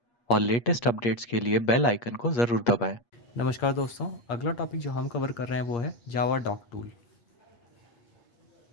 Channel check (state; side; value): late; right; 8.4 ms